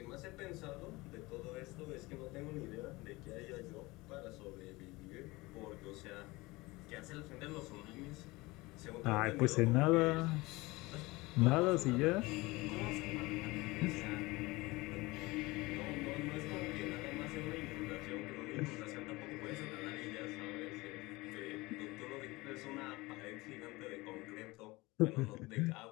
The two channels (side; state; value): right; quieter; 22.1 dB